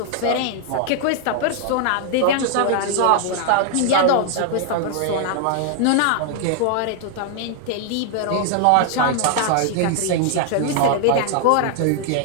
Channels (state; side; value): different; both; correlation 0.00